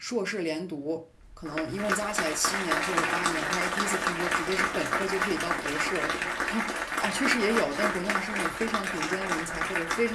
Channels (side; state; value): both; identical; correlation 1.00